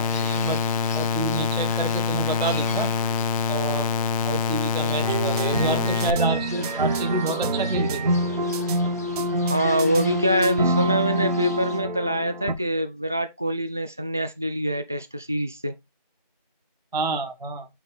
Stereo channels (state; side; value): inverted; both; correlation -0.47